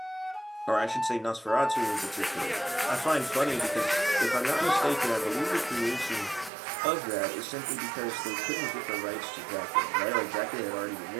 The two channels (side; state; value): left; drops out; at 6.5 s